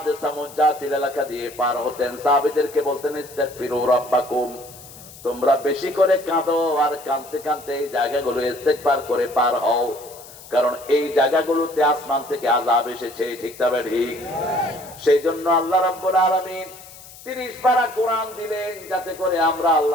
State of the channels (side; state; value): left; noise; hiss, 18 dB below the sound